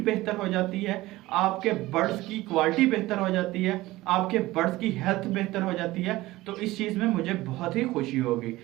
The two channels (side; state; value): left; quieter; 18.2 dB